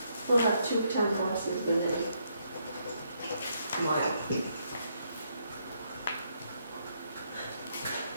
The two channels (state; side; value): inverted; both; correlation -0.75